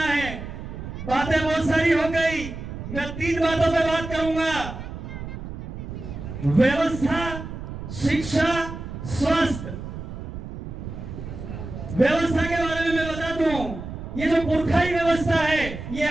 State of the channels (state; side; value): noise; right; rumble, 9 dB below the sound